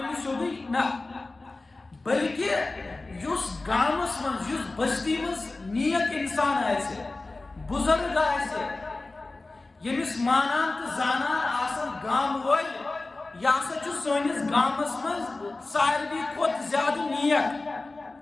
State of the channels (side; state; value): right; quieter; 3.3 dB